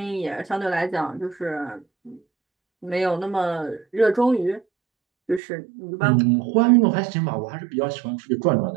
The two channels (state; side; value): drops out; left; at 5.4 s